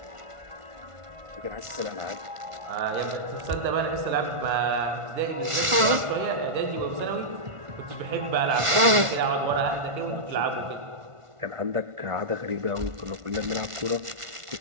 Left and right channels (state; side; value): late; left; 1.5 ms